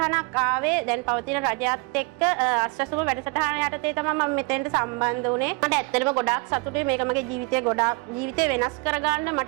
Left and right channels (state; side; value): quieter; left; 29.7 dB